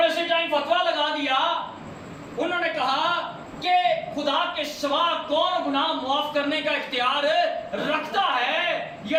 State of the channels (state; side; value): identical; both; correlation 1.00